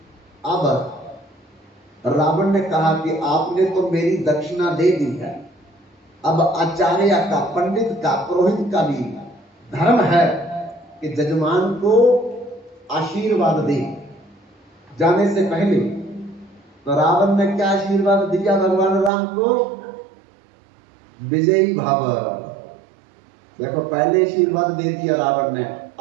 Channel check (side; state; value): left; drops out; at 19.1 s